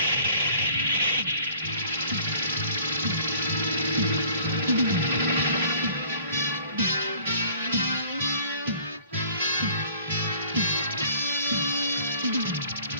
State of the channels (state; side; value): inverted; both; correlation -0.53